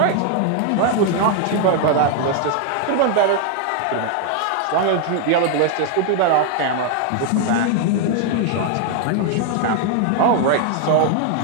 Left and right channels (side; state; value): both; different; correlation 0.00